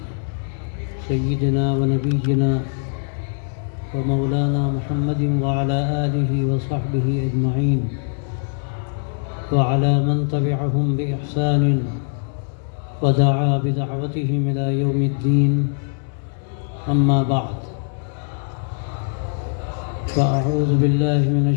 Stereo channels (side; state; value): right; silent; digital silence